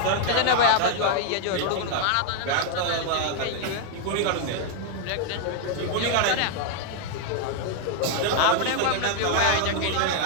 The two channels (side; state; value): both; different; correlation 0.00